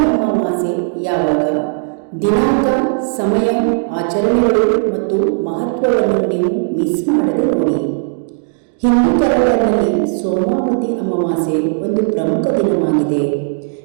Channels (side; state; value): left; silent; digital silence